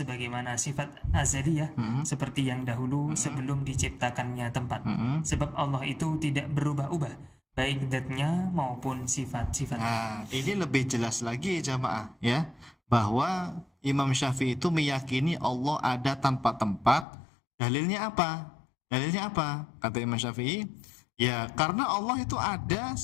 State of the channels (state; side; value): drops out; right; at 17.1 s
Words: sifat azaliyah seperti yang dahulu sebelum diciptakannya tempat. Sebab Allah itu tidak berubah-ubah, baik zatnya maupun sifat-sifatnya. Nah, ini lebih jelas lagi jamaah ya, bahwa Imam Syafi'i itu meyakini Allah ada tanpa tempat. Dalilnya apa? Dalilnya apa? Kata Imam Syafi'i, ya karena Allah itu ada